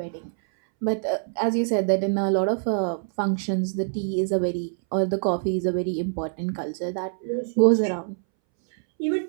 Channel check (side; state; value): left; silent; 62 dB below the other